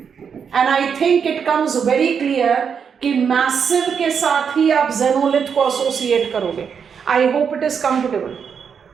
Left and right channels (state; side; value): quieter; left; 6.8 dB